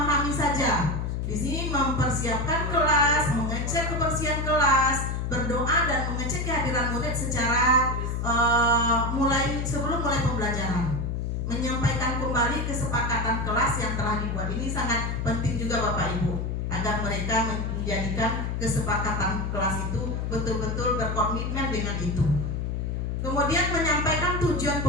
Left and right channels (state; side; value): noise; left; hum, 1 dB below the sound